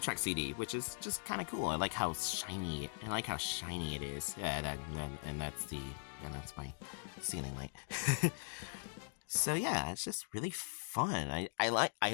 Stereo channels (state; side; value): silent; right; digital silence